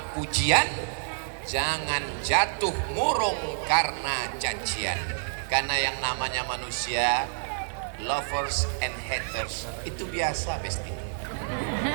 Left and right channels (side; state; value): left; silent; 57 dB below the other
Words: pujian, jangan jatuh murung karena cacian. Karena yang namanya manusia, lovers and haters, itu biasa besti.